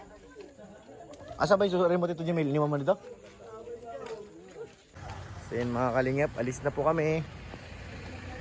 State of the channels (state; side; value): identical; both; correlation 1.00